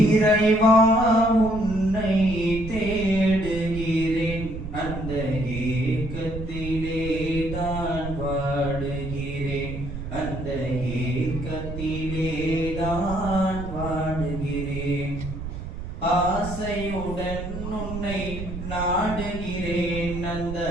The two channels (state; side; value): noise; right; rumble, 8 dB below the sound